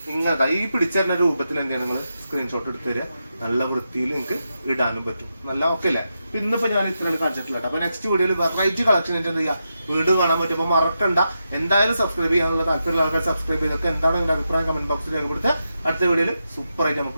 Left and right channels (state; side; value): inverted; both; correlation -0.87